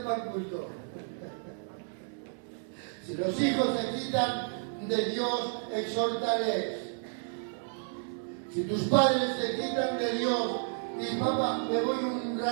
para el culto. Si los hijos te quitan de Dios, exhórtales. Si tus padres te quitan de Dios, y papá, me voy un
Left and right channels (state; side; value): silent; left; 57 dB below the other